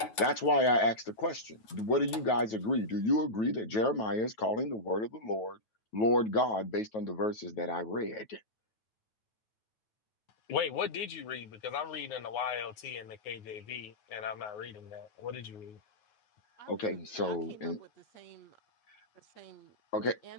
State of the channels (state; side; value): late; right; 9.4 ms